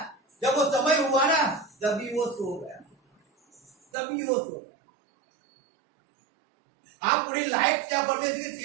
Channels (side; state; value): left; drops out; at 3.8 s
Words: जब वो समय हुआ ना, तभी वो सो गया, तभी वो सो गया। आप पूरी लाइफ क्या परमेश्वर की